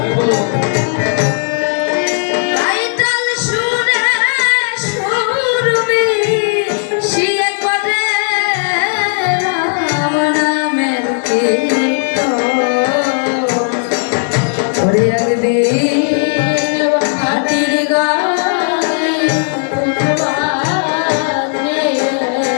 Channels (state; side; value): silent; right; 60 dB below the other